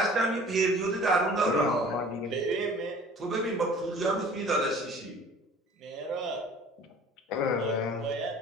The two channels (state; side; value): normal; both; correlation 0.48